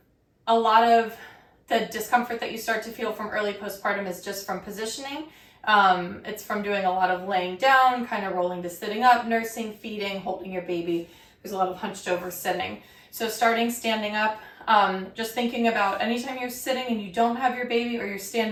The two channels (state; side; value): identical; both; correlation 1.00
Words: lot of the discomfort that you start to feel from early postpartum is just from positioning. It's from doing a lot of laying down, kind of rolling to sitting up, nursing, feeding, holding your baby. There's a lot of hunched over sitting. So starting standing up, just thinking about anytime you're sitting and you don't have your baby or you're